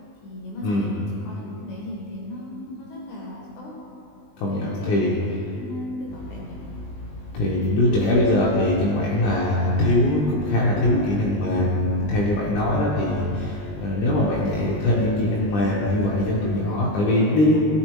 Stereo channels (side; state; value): right; late; 20 ms